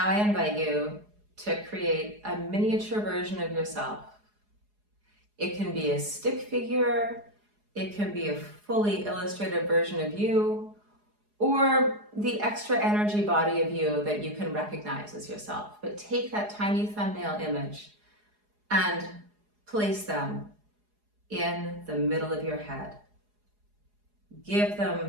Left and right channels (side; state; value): left; late; 4.8 ms